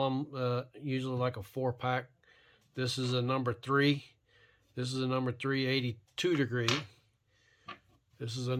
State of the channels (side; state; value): both; identical; correlation 1.00